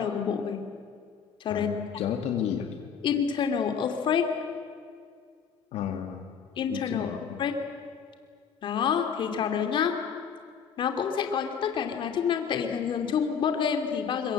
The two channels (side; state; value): right; quieter; 7.0 dB